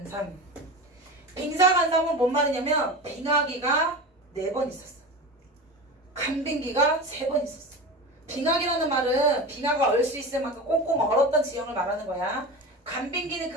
빙사간삼은 뭔 말이냐면 빙하기가 4번 있었어. 간빙기가 3번 있었어. 빙하기라는 말은 빙하가 얼 수 있을 만큼 꽁꽁 얼었던 지형을 말하는 거야. 간빙기는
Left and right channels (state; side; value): normal; both; correlation 0.29